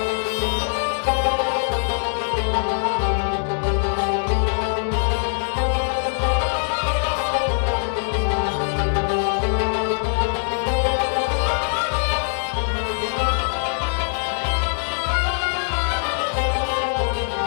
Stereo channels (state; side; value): silent; right; digital silence